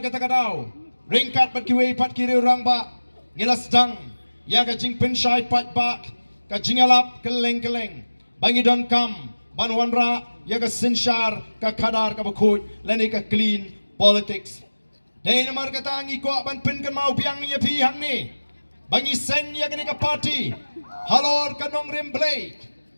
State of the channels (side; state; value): both; inverted; correlation -1.00